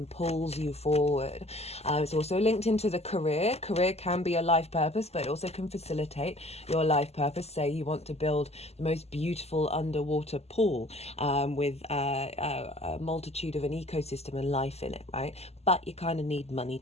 pulls you forward. It's also linked into the career. Career can be a life purpose, but it also can facilitate your life purpose. Say you want to build the most beautiful underwater pool with a multitude of an ecosystem and life in it, right? But you kind of need money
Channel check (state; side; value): late; right; 0.30 ms